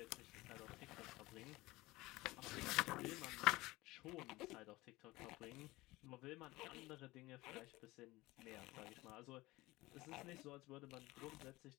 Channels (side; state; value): right; quieter; 20.0 dB